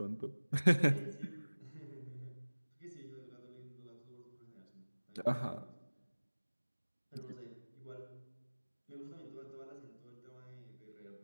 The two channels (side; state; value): both; inverted; correlation -1.00